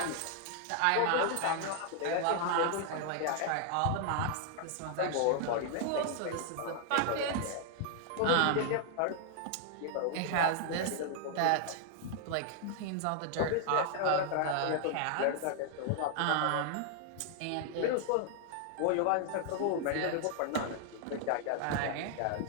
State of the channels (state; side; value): different; both; correlation 0.00